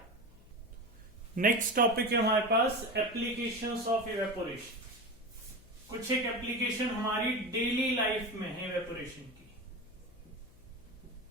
नेक्स्ट टॉपिक है हमारे पास एप्लीकेशंस ऑफ इवेपोरेशन। कुछ एक एप्लीकेशन हमारी डेली लाइफ में है इवेपोरेशन की।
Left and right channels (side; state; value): left; noise; hum, 24 dB below the sound